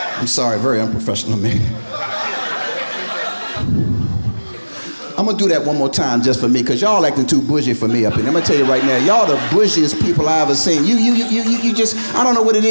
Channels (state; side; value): inverted; both; correlation -1.00